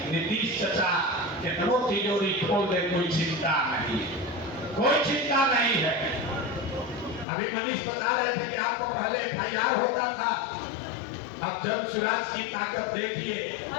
नीतीश चाचा कितनों तिजोरी खोल दे, कोई चिंता नहीं, कोई चिंता नहीं है। अभी मनीष बता रहे थे कि आपको पहले FIR होता था, अब जन सुराज की ताकत देखिए,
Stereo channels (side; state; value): right; drops out; at 7.2 s